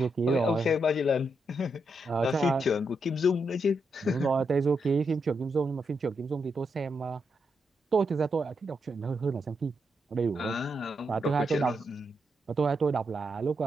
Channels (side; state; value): both; normal; correlation 0.82